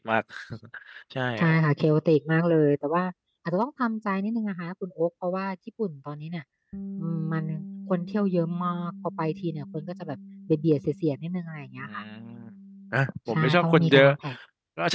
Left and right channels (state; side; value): identical; both; correlation 1.00